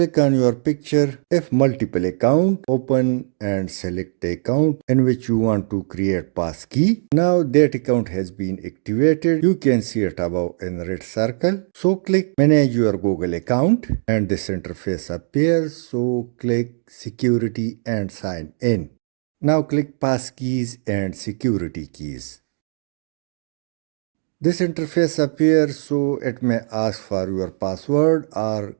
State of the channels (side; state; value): left; silent; digital silence